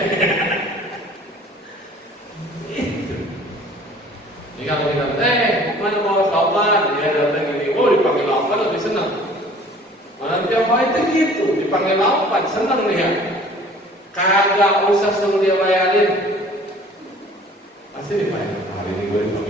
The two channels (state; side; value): normal; both; correlation 0.50